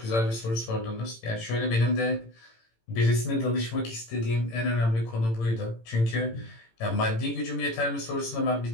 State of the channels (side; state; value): right; late; 18 ms